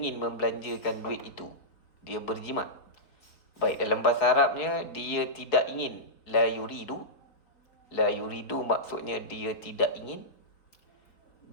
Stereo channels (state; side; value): late; right; 4.1 ms